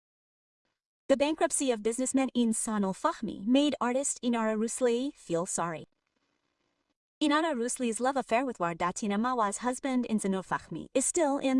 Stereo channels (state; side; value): identical; both; correlation 1.00